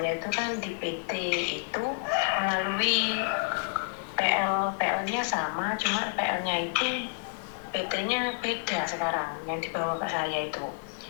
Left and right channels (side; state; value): right; silent; digital silence